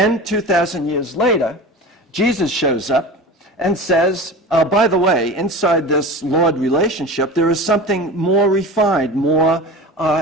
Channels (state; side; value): normal; both; correlation 0.32